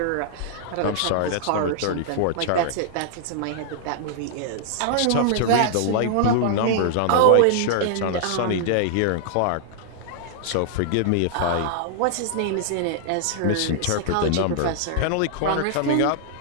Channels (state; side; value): different; both; correlation -0.01